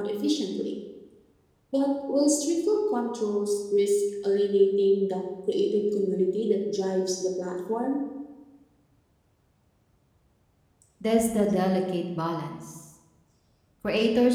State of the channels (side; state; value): both; identical; correlation 1.00